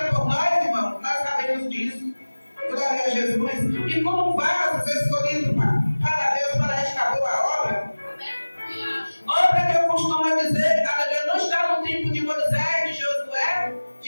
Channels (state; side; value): inverted; both; correlation -1.00